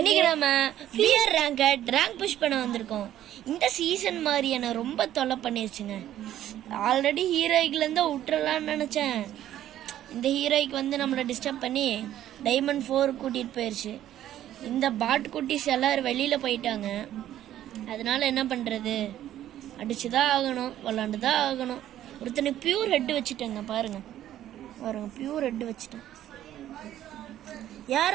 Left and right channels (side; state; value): left; quieter; 12.2 dB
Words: நம்ம பியர் ரேங்க் புஷ் பண்ண வந்திருக்கோம். இந்த சீசன் மாதிரி என்ன ரொம்ப தொல்லை பண்ணிருச்சுங்க. ஆல்ரெடி ஹீரோய்க்குல இருந்து விட்டுறலாம்னு நினைச்சேன். இந்த ஹீரோய்க்கு வந்து நம்மளை டிஸ்டர்ப் பண்ணி டைமண்ட் 4 கூட்டிட்டு போயிருச்சு. இந்த பாட் குட்டிஸ் எல்லாரும் வெளியில போயிட்டாங்க. அதனால என்ன பண்றது, அடிச்சுதான் ஆகணும், விளாண்டுதான் ஆகணும். ஒருத்தனை பியூர் ஹெட் வச்சுட்டேங்க, பாருங்க பியூர் ஹெட் வச்சுட்டேன்.